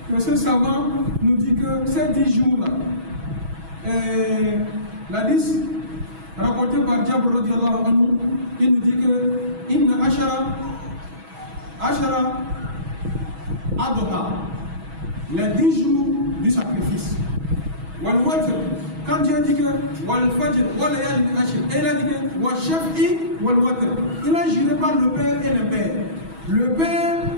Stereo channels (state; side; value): late; left; 6.2 ms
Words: que ce savant nous dit que ces 10 jours-là, l'hadith rapporté par Jabr radiyallahu anhu, il nous dit que Inna ashara adha, les 10 jours du sacrifice. Wal watr, quand Dieu dit que wal fajr wal layalin ashr, et il a dit que wal shaf'i wal watr, il a juré par le Père et le Père. Le Père